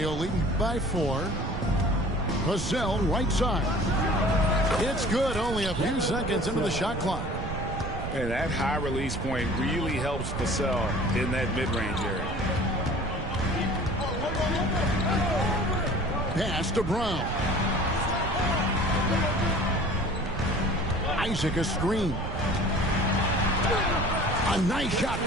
leading by 4. Vassell right side. It's good, only a few seconds into the shot clock. And that high release point really helps Vassell in that mid-range area. Pass to Brown. Isaac a screen. A nice shot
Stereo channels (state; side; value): noise; right; rumble, 6 dB below the sound